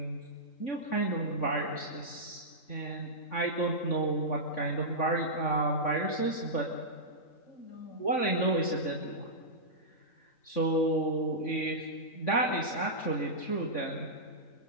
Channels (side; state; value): right; late; 3.6 ms